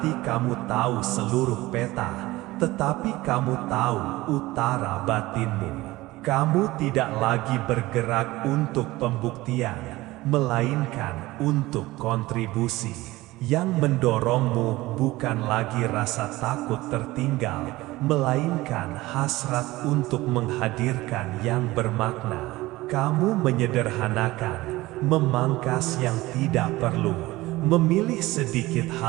kamu tahu seluruh peta, tetapi kamu tahu utara batinmu. Kamu tidak lagi bergerak untuk pembuktian, melainkan untuk kontribusi. Yang mendorongmu bukan lagi rasa takut tertinggal, melainkan hasrat untuk menghadirkan yang bermakna. Kamu menyederhanakan, memangkas yang tidak perlu, memilih sedikit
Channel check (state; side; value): quieter; left; 18.9 dB